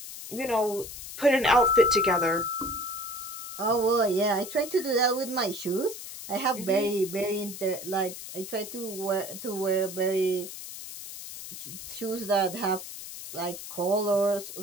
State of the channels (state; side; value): noise; left; hiss, 11 dB below the sound